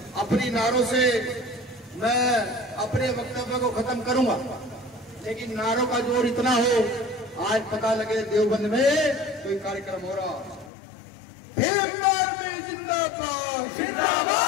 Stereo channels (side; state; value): right; drops out; at 10.7 s